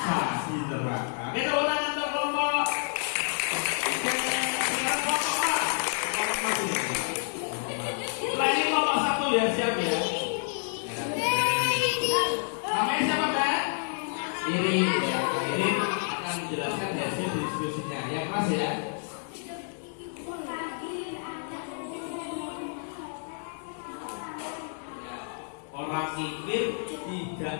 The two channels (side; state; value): right; silent; 58 dB below the other